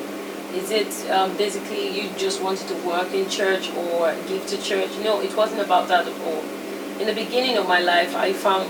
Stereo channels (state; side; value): identical; both; correlation 1.00